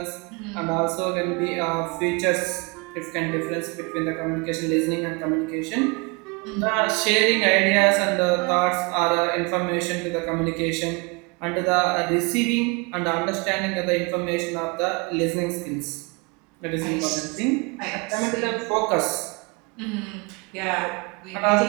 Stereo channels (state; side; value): quieter; left; 29.3 dB